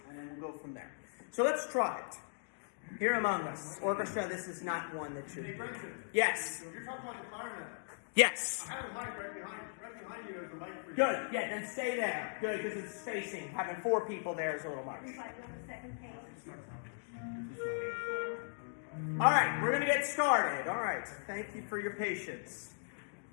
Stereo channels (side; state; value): right; silent; digital silence